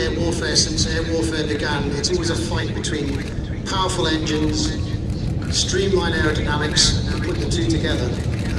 warfare since air warfare began, it's always a fight between powerful engines, streamlined aerodynamics, and put the two together.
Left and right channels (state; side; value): identical; both; correlation 1.00